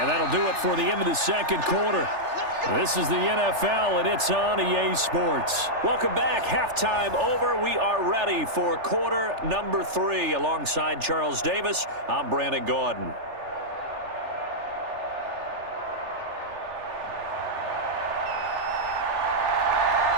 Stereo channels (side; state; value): left; late; 3.4 ms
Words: that'll do it for the end of the second quarter. This is the NFL, and it's on EA Sports. Welcome back. Halftime over. We are ready for quarter number 3. Alongside Charles Davis, I'm Brandon Gordon.